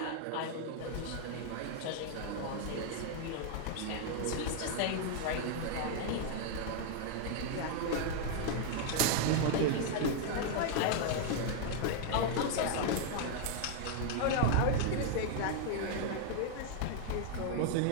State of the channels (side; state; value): both; different; correlation 0.00